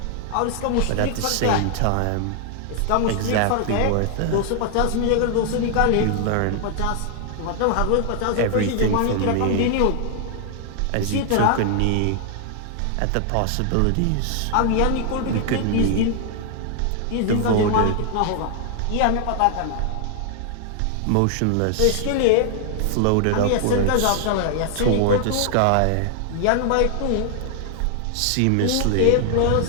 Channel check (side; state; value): both; different; correlation 0.00